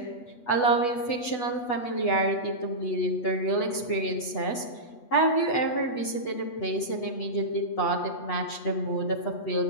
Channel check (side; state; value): right; late; 8.1 ms